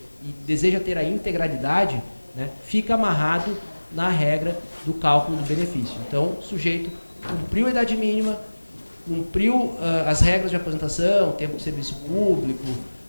e deseja ter a integralidade, né, fica amarrado na regra do cálculo do benefício. Então, o sujeito cumpriu a idade mínima, cumpriu as regras de aposentação, tempo de serviço público,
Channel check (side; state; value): both; inverted; correlation -1.00